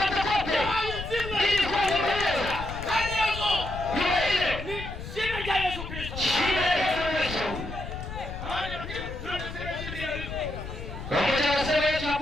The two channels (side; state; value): left; noise; rumble, 9 dB below the sound